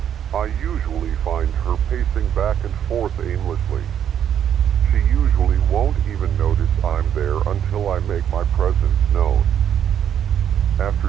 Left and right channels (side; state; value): left; quieter; 9.3 dB